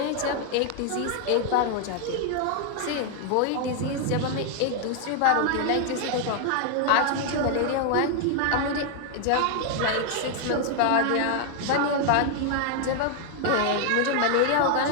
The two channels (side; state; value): both; different; correlation 0.00